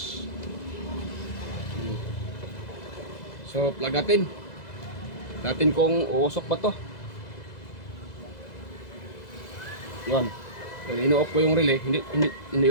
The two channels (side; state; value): right; late; 2.0 ms